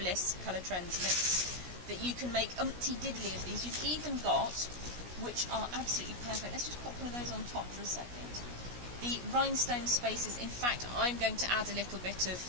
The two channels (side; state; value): left; late; 16 ms